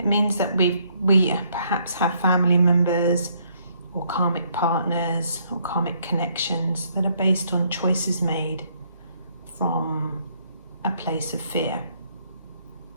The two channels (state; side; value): inverted; both; correlation -0.69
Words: means that we perhaps have family members or karmic partners or karmic connections that are based on choices made from a place of fear,